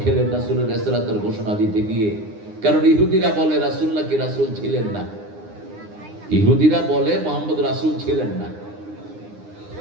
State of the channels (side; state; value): left; late; 9.8 ms